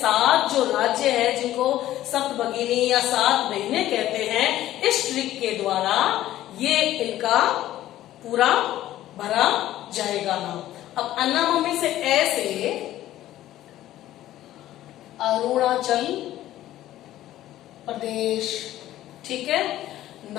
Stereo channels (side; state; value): right; quieter; 13.9 dB